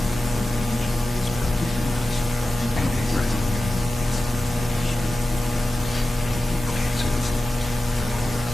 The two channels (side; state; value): both; normal; correlation 0.94